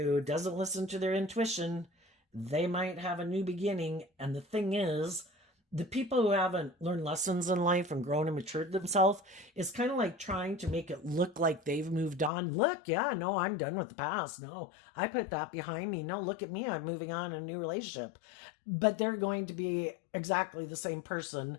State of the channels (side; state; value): right; drops out; at 12.3 s